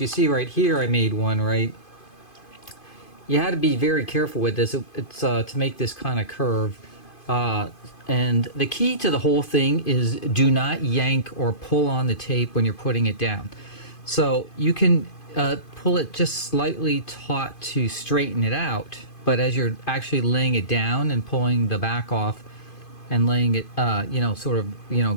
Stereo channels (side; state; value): right; late; 2.5 ms